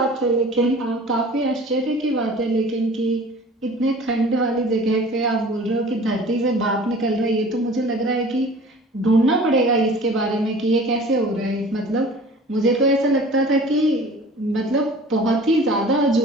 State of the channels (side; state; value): both; normal; correlation 0.44